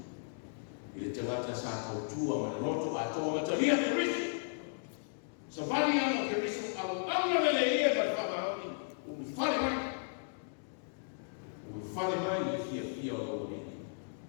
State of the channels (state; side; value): silent; right; digital silence